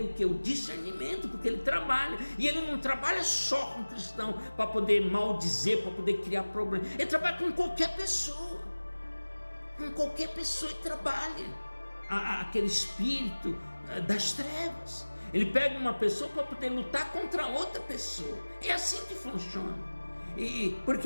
o que? O discernimento, porque ele trabalha, e ele não trabalha só com cristão, para poder maldizer, para poder criar problema, ele trabalha com qualquer pessoa ele trabalha. Aquele espírito das trevas, ele pega uma pessoa para poder lutar contra outra pessoa. É assim que funciona. Porque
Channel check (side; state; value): both; inverted; correlation -1.00